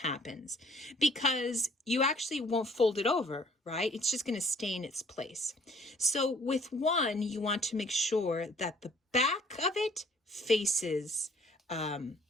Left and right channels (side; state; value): both; normal; correlation 0.59